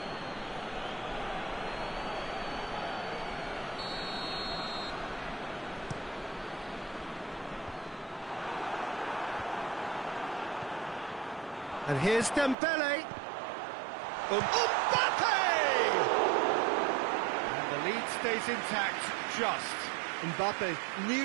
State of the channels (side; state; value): left; drops out; at 12.6 s